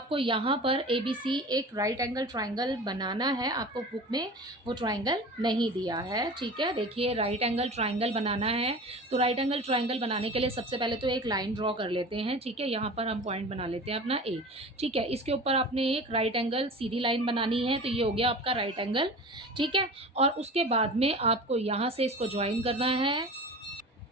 यहाँ पर ए B सी एक राइट एंगल ट्राइंगल बनाना है। आपको बुक में वो ट्राइंगल नहीं दिया है। ठीक है, देखिए राइट एंगल ट्राइंगल बनाना है तो राइट एंगल ट्राइंगल बनाने के लिए सबसे पहले तो एक लाइन ड्रॉ कर लेते हैं। ठीक है, यहाँ पर हम पॉइंट बना लेते हैं अपना ए। ठीक है, इसके ऊपर आपने एक राइट एंगल सीधी लाइन बनानी है, तो ये हो गया आपका राइट एंगल। ठीक है, और उसके बाद में आपको यहाँ से इसको ज्वाइन करना है।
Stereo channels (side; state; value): both; normal; correlation 0.36